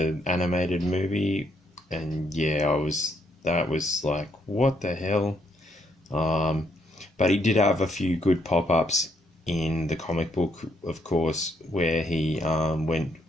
animated movie. And yeah, that was like, what the hell? But he did have a few good pop-ups in the comic book, of course, where he went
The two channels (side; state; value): both; normal; correlation 0.73